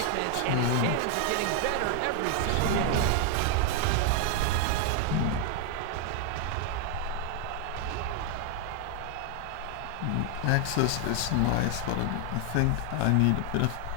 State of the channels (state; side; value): different; both; correlation 0.00